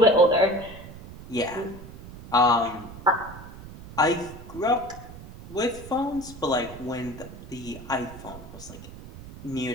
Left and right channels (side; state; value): right; noise; rumble, 15 dB below the sound